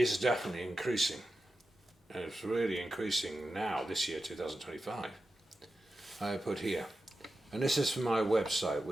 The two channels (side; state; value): both; normal; correlation 0.92